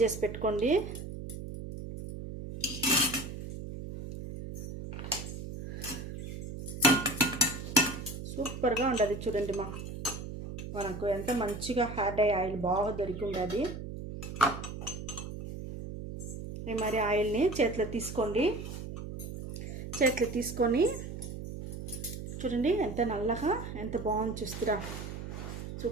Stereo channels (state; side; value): noise; right; hum, 8 dB below the sound